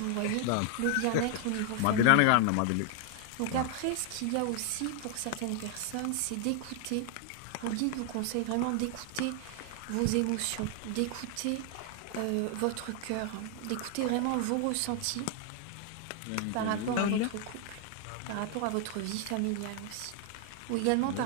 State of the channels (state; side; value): different; both; correlation 0.00